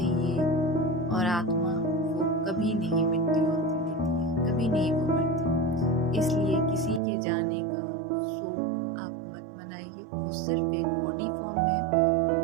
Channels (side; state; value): left; drops out; at 7.0 s